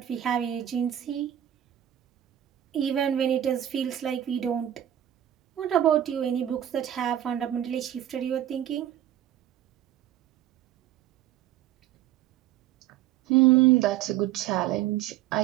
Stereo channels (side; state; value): left; quieter; 11.8 dB